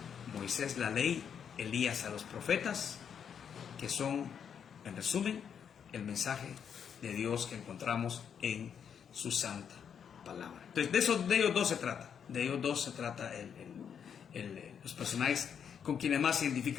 Moisés la ley, Elías a los profetas, que son, en resumen, el mensaje de Dios que encontramos en su santa palabra. Entonces de ellos dos se trata, los personajes con quienes más se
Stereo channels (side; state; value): right; quieter; 7.7 dB